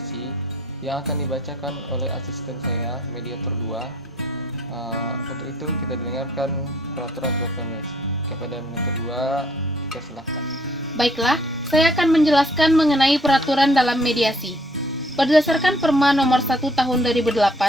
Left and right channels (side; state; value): both; normal; correlation 0.62